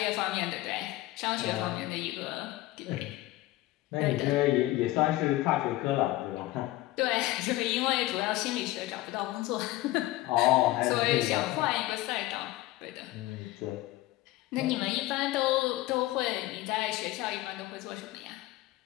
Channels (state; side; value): quieter; right; 17.3 dB